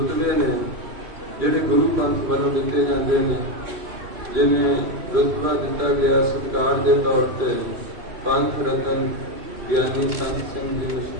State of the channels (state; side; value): late; left; 2.7 ms